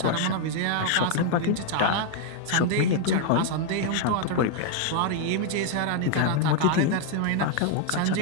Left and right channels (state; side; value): different; both; correlation 0.00